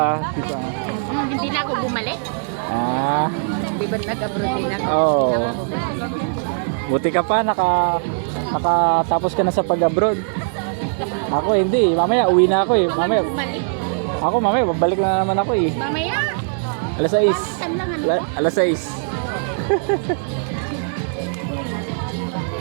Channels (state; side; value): silent; left; digital silence